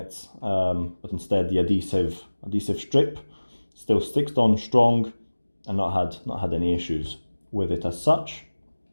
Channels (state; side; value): inverted; both; correlation -1.00